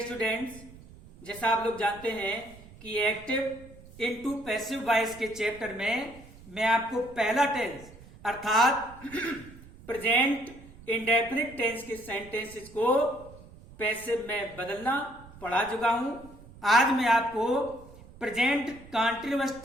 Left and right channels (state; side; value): noise; right; rumble, 20 dB below the sound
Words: स्टूडेंट्स, जैसा आप लोग जानते हैं कि एक्टिव इनटू पैसिव वॉइस के चैप्टर में मैं आपको पहला टेंस अर्थात प्रेजेंट इंडेफिनिट टेंस के सेंटेंसेस को पैसिव में बदलना पढ़ा चुका हूं। आज मैं आपको प्रेजेंट कॉन्टिन्यूअस